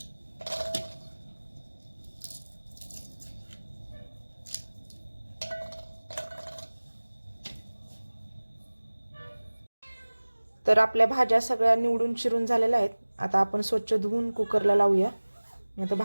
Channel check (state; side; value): inverted; both; correlation -1.00